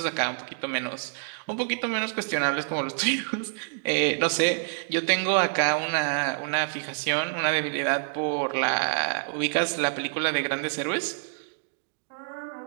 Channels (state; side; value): silent; left; digital silence